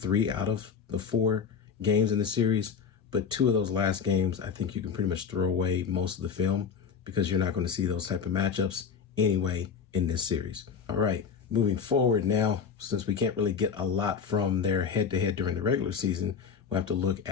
out of the 4 games in the series, but 2 of those last games, I think you can pretty much throw away most of the film, because you're not going to see those type of matchups anyway in this series. All right, moving forward now, since we can't really get a lot from their head-to-head during the regular season, we'll have to look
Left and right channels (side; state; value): right; quieter; 6.6 dB